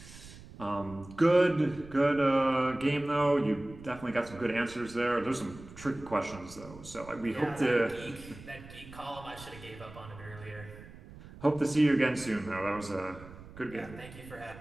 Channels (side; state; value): right; noise; rumble, 17 dB below the sound